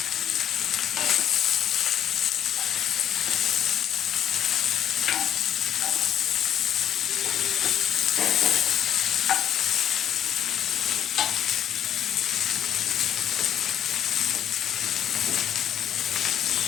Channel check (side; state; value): right; quieter; 9.9 dB